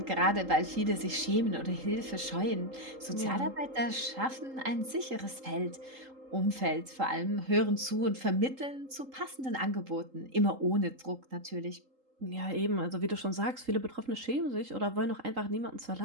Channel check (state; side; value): late; left; 3.8 ms